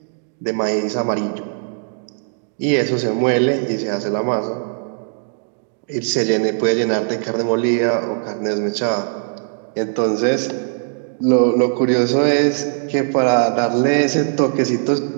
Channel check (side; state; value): left; silent; 66 dB below the other